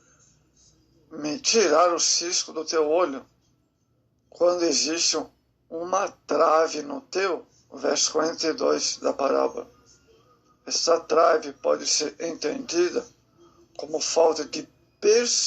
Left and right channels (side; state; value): both; identical; correlation 1.00